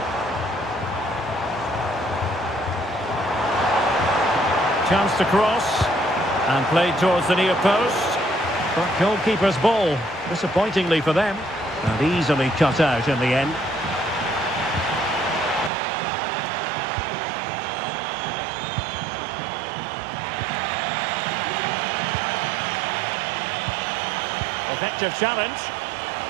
Chance to cross. And played towards the near post. But goalkeeper's ball, disappointingly for them. And easily cut out in the end. Effective challenge.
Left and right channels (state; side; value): drops out; left; at 15.7 s